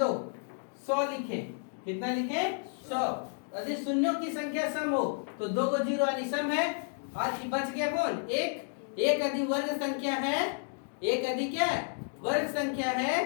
100 लिखे, कितना लिखे 100। यदि शून्यों की संख्या सम हो तो 2 को जीरो यानी सम है, और बच गया कौन, एक यदि वर्ग संख्या है, एक यदि क्या वर्ग संख्या है,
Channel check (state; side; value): silent; right; 57 dB below the other